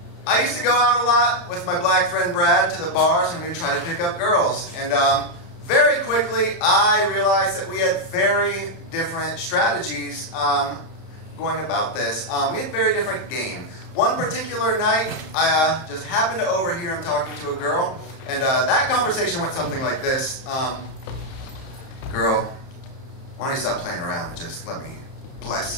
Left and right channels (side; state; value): right; late; 30 ms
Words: I used to go out a lot with my black friend Brad to the bars and we'd try to pick up girls. And very quickly, I realized that we had very different strategies going about this. We had very different game. One particular night, I just happened to overhear him talking to a girl, and that conversation went something like this. Girl, why don't you stop playing around and just let me bless